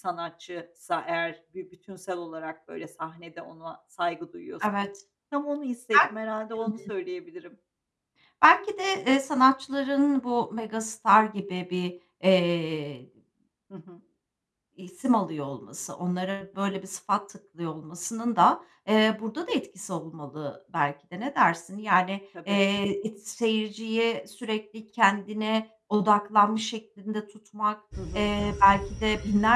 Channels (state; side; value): identical; both; correlation 1.00